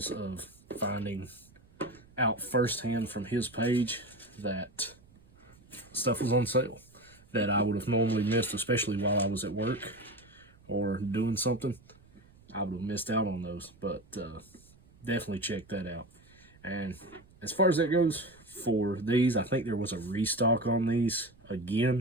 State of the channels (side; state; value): right; noise; rumble, 27 dB below the sound